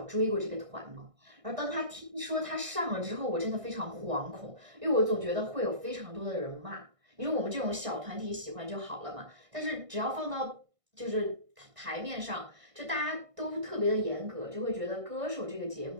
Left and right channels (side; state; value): left; late; 1.6 ms